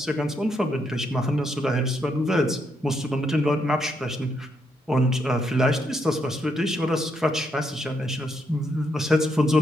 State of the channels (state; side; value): normal; both; correlation 0.77